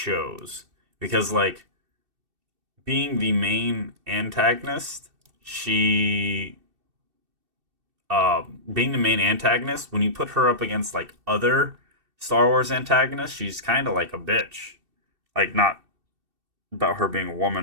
because like being the main antagonist, she being the main antagonist, when you put her up against like other Star Wars antagonists, she's kind of like a bitch. Like not about her being a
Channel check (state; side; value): late; left; 2.7 ms